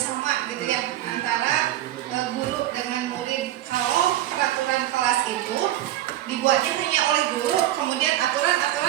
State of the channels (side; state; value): left; quieter; 13.8 dB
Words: gitu ya, antara guru dengan murid. Kalau peraturan kelas itu dibuatnya hanya oleh guru, kemudian